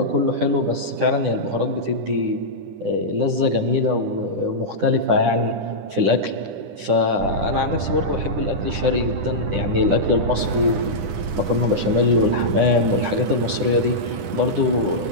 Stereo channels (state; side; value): late; left; 10 ms